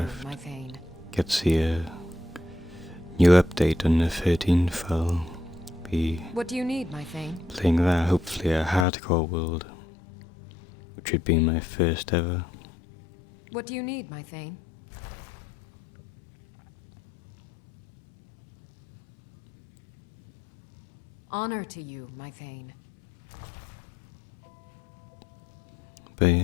my Thane. gets the new update on the 13th, I'll be What do you need, my Thane? playing that, hopefully a hardcore world, which would be my first ever. What do you need, my Thane? Honor to you, my Thane. But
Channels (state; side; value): drops out; right; at 8.8 s